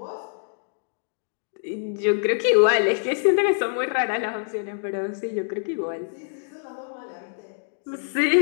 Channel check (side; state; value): right; silent; digital silence